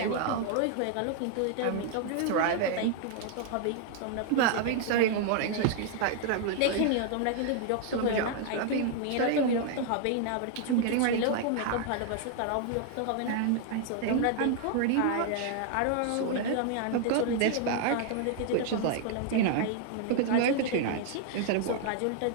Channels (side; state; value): both; different; correlation 0.00